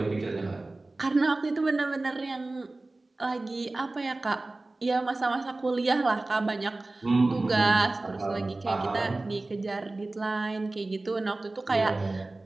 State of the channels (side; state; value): left; quieter; 3.0 dB